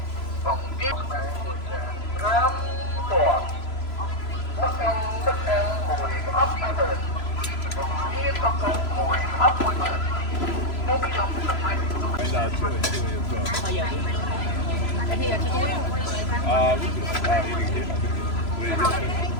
Bao giờ đi? Cái thì là cho tôi.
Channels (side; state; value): right; late; 3.0 ms